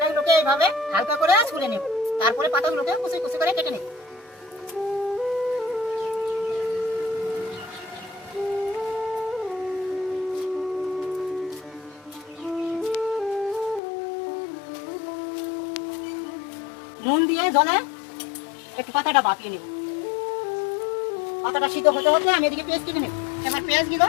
এইভাবে হালকা করে ছুলে নেব, তারপরে পাতাগুলোকে কুচি কুচি করে কেটে নেব। নুন দিয়ে জলে একটু পাতাটা ভাপিয়ে নেব। পাতাটা সিদ্ধ হতে হতে আমি এদিকে পেঁয়াজ কেটে নেব। এবার পেঁয়াজগুলো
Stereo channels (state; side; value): drops out; right; at 13.8 s